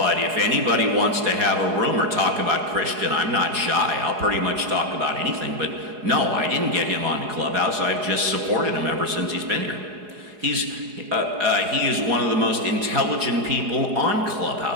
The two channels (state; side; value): late; left; 4.8 ms